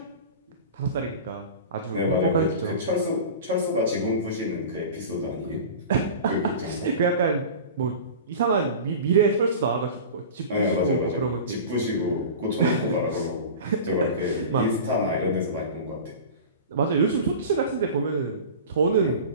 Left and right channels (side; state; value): both; inverted; correlation -0.34